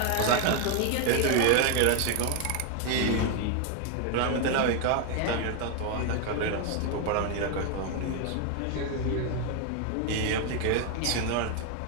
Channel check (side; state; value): both; different; correlation 0.01